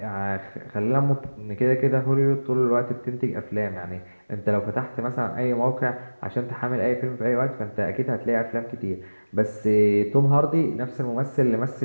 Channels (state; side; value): inverted; both; correlation -1.00